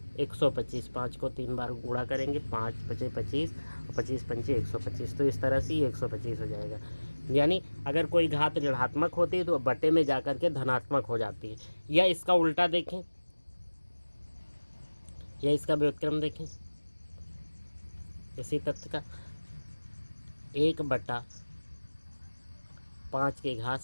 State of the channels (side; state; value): both; inverted; correlation -1.00